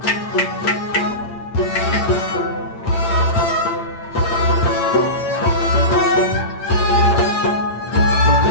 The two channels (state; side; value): late; right; 8.8 ms